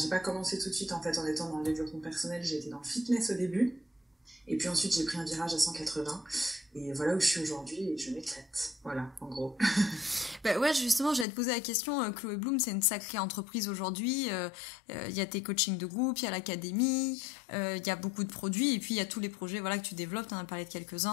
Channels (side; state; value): right; drops out; at 11.2 s